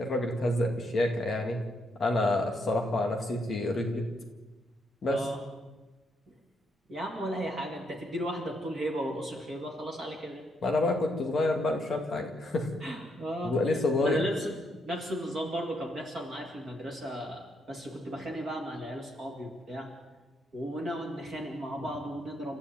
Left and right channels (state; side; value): normal; both; correlation 0.76